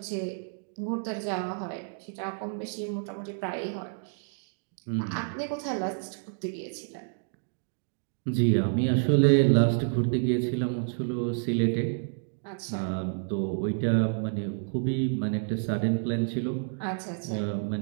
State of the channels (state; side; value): silent; left; digital silence